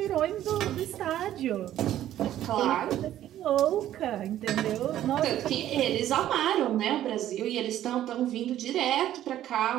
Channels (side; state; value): left; quieter; 12.4 dB